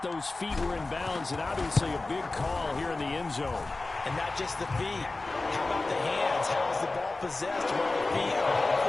those feet were in bounds, and obviously a big call here in the end zone. And not just the feet. How about the hands? How is the ball possessed while the feet are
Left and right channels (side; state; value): right; quieter; 3.3 dB